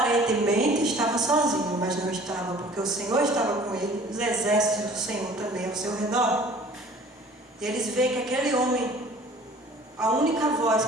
estava sozinho, mas não estava, porque o Senhor estava com ele, os exércitos do Senhor também ao seu redor. E eles veem que aquele homem, a única voz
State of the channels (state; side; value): normal; both; correlation 0.49